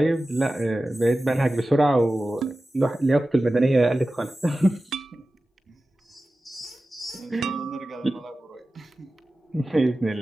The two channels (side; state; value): both; normal; correlation 0.95